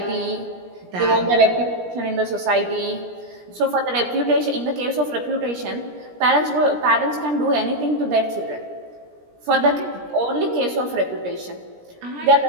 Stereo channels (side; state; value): left; late; 17 ms